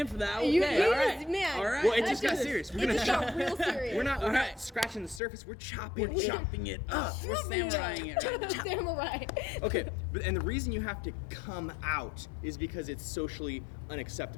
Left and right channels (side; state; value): right; drops out; at 5.2 s